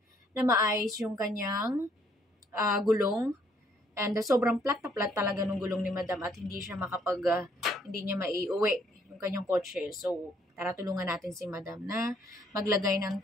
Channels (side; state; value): both; normal; correlation 0.66